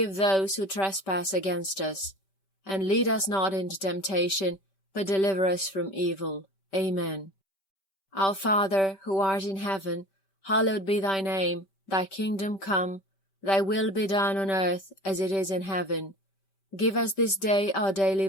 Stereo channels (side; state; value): right; late; 5.2 ms